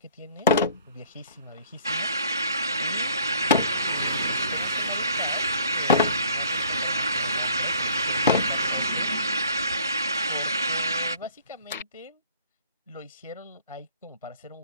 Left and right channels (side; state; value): both; inverted; correlation -0.55